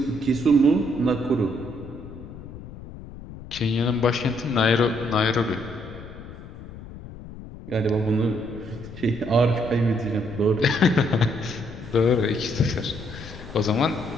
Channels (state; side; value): noise; left; rumble, 14 dB below the sound